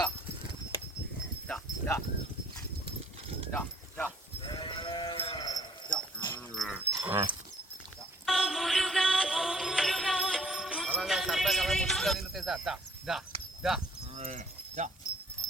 దా దా దా దా దా అలాగే సరదాగా అలా ముట్టుగా తిరుగుతాయి సార్. దా దా దా దా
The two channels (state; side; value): normal; both; correlation 0.57